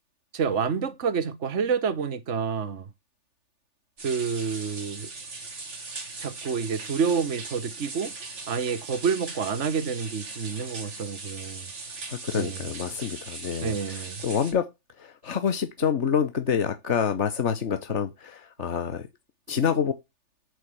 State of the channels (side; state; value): left; late; 3.4 ms